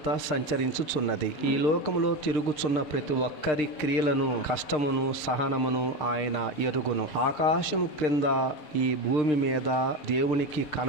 సంచరించుచున్నది. ఈ లోకములో తిరుగుచున్న ప్రతి ఒక్కరి క్రియలను, కష్టమును, సహనమును ఆయన ఎరుగును. ఆకాశము క్రింద, ఈ భూమి మీద దేవునికి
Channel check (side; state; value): right; late; 6.6 ms